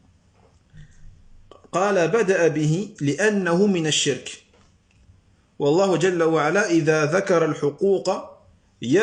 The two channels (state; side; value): identical; both; correlation 1.00